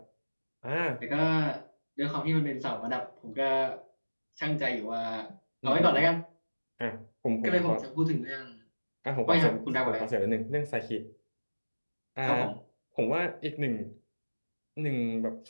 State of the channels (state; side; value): inverted; both; correlation -1.00